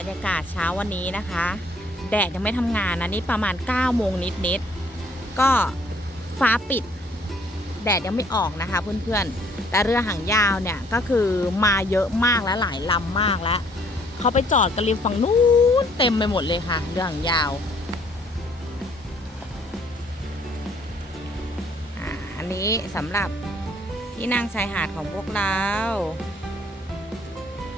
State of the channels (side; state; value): both; normal; correlation 0.62